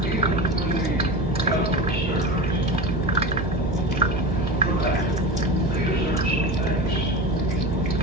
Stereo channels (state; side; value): normal; both; correlation 0.27